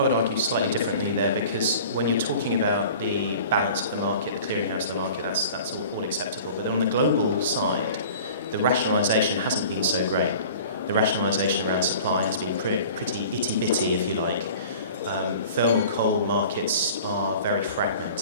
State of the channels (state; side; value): inverted; both; correlation -0.43